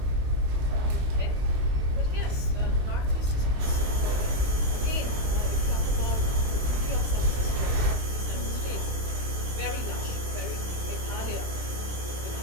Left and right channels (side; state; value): left; late; 23 ms